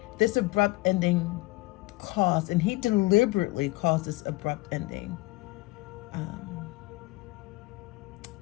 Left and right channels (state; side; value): quieter; right; 21.6 dB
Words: this abrupt ending caused, and he deliberately caused this abrupt ending.